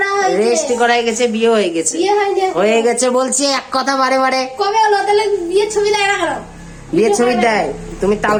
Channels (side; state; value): both; identical; correlation 1.00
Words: হয়েছে, রেজিস্ট্রি করাই গেছে, বিয়ে হয়ে গেছে। বিয়ে হয়নি, হয়ে গেছে বলছি এক কথা বারে বারে। কবে হলো তাহলে? বিয়ের ছবি দেয় না কেন? বিয়ের ছবি দেয়, তুমি